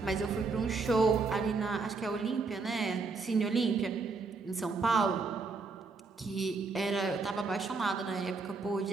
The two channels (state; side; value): quieter; left; 4.2 dB